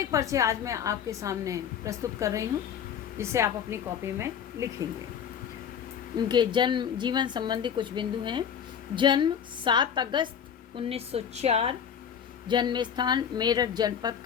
परिचय आज मैं आपके सामने प्रस्तुत कर रही हूँ, जिसे आप अपनी कॉपी में लिखेंगे। उनके जन्म जीवन संबंधी कुछ बिंदु हैं। जन्म 7 अगस्त 1904, जन्म स्थान मेरठ जनपद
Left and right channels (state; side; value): quieter; right; 8.2 dB